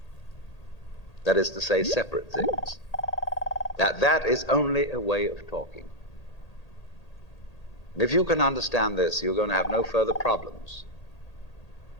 That is to say, separate things. That is only a way of talking. And if you can understand this, you're going to have no further problems.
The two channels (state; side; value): late; right; 1.8 ms